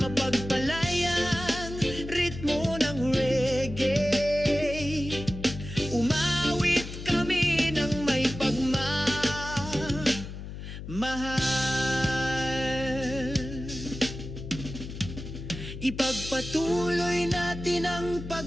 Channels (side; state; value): left; noise; hum, 10 dB below the sound